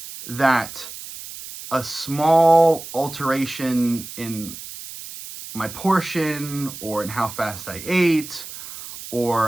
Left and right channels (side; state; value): right; noise; hiss, 12 dB below the sound